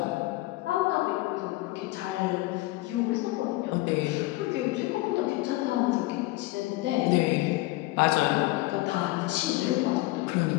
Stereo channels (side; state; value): right; quieter; 19.9 dB